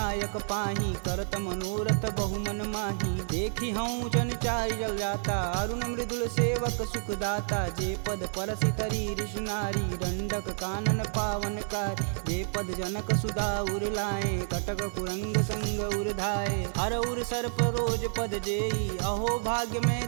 पाही, करत मनोरथ बहुमन माही। देखी हूँ जन चारि जल जाता, अरुण मृदुल सेवक सुखदाता। जे पद परसि तरी ऋषि नारी, दंडक कानन पावन कार। जे पद जनक सुधा उर लाए, कटक कुरंग संग उर धाये। हर उर सर्प रोज पद जेई, अहो भाग्य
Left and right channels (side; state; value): left; silent; digital silence